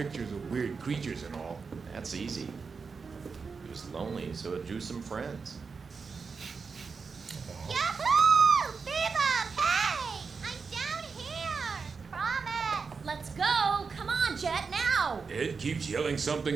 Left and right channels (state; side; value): quieter; left; 5.1 dB